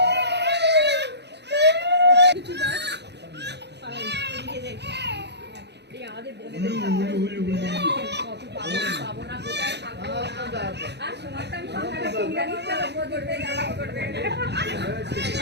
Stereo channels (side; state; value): left; late; 0.50 ms